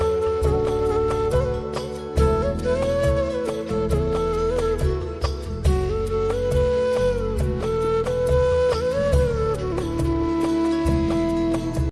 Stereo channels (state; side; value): identical; both; correlation 1.00